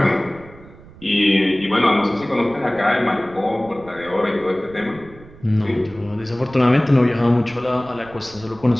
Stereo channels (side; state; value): right; noise; rumble, 21 dB below the sound